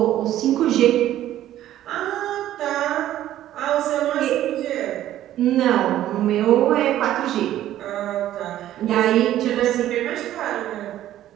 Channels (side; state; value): left; quieter; 12.9 dB